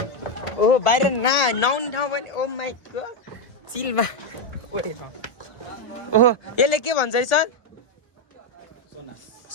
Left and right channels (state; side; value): late; right; 1.0 ms